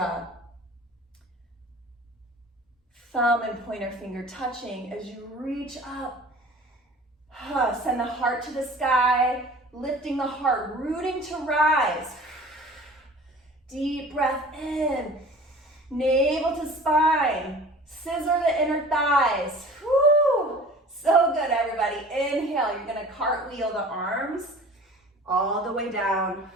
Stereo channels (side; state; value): both; normal; correlation 0.44